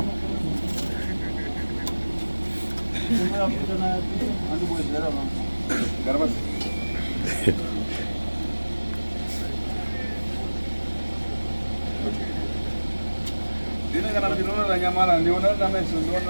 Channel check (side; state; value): both; inverted; correlation -1.00